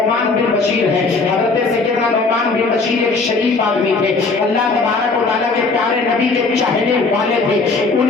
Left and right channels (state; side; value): quieter; right; 4.0 dB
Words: بن بشیر ہیں. حضرت سیدنا نعمان بن بشیر ایک شریف آدمی تھے, اللہ تبارک و تعالیٰ کے پیارے نبی کے چاہنے والے تھے.